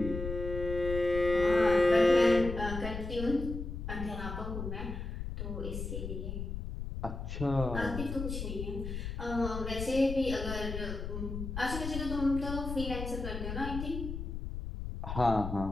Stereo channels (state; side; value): noise; left; rumble, 6 dB below the sound